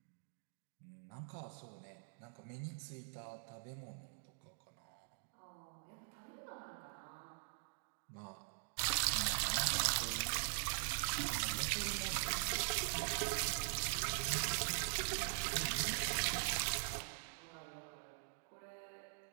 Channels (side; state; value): left; silent; digital silence